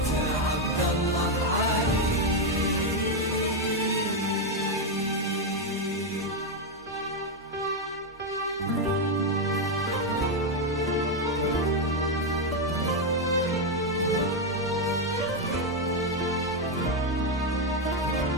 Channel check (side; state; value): both; normal; correlation 0.04